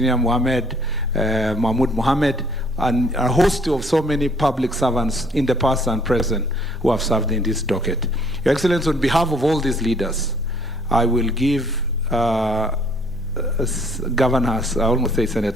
Mahmoud Mohammed, and a host of so many public servants in the past and present who have served in this docket. Your Excellency, on behalf of all these leaders, I will give Governors, I almost say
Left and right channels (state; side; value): normal; both; correlation 0.60